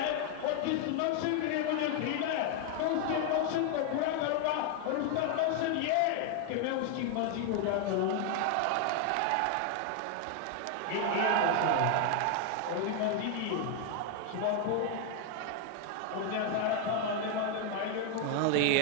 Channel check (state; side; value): different; both; correlation 0.00